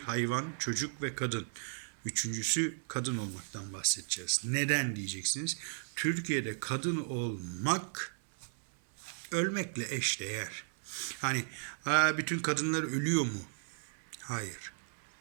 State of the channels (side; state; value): left; silent; 54 dB below the other